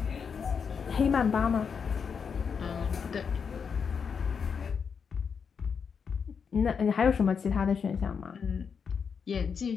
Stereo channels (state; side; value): quieter; right; 6.3 dB